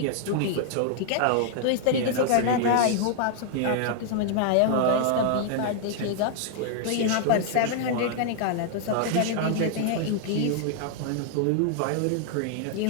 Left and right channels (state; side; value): different; both; correlation 0.00